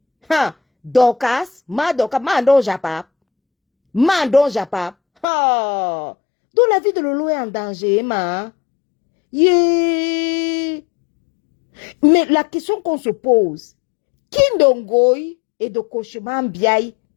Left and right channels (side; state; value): right; drops out; at 5.2 s